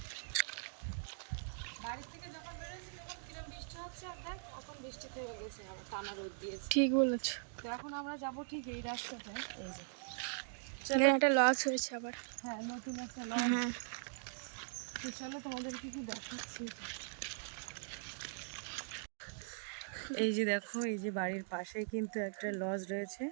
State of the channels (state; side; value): silent; left; digital silence